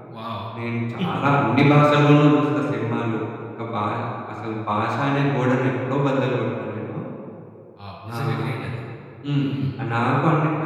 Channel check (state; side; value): identical; both; correlation 1.00